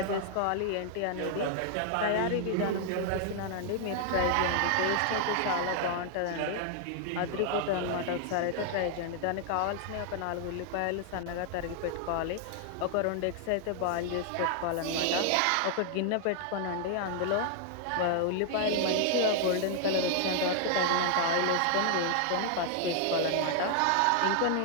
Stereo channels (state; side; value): different; both; correlation 0.00